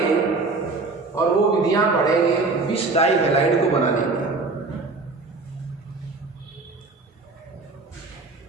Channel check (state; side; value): quieter; left; 3.7 dB